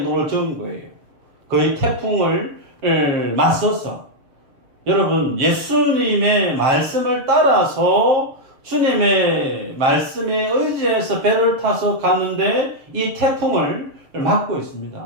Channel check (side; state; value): left; late; 7.1 ms